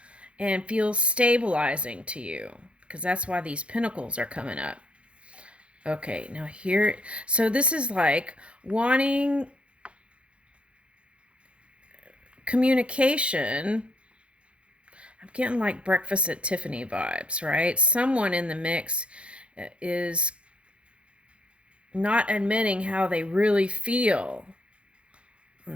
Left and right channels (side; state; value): left; late; 0.060 ms